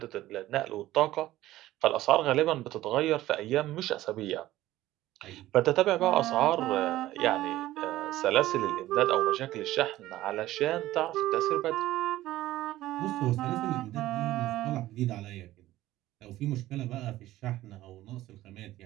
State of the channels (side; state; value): left; quieter; 15.5 dB